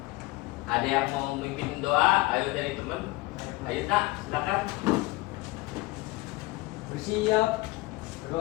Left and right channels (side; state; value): right; quieter; 21.8 dB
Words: ada yang mau memimpin doa? Ayo dari teman. Ayo nak, silakan. Bersiap,